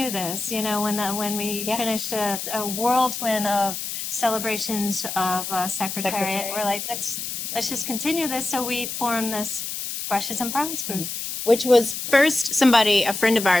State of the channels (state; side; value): noise; left; hiss, 5 dB below the sound